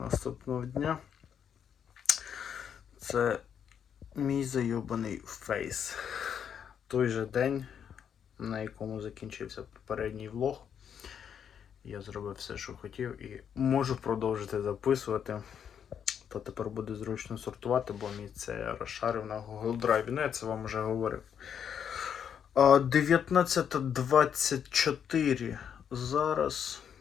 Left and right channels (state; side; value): quieter; right; 8.2 dB